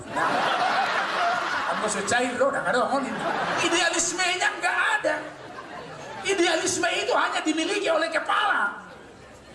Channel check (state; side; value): identical; both; correlation 1.00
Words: anggo so cair dong nah kadang idealismenya enggak ada. Idealisme itu hanya dimiliki oleh kepala